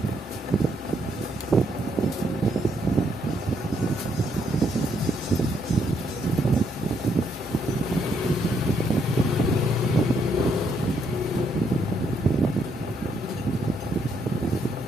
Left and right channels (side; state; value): both; normal; correlation 0.74